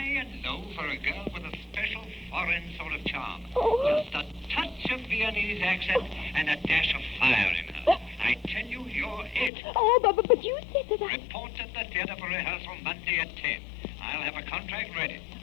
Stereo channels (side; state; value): right; drops out; at 9.5 s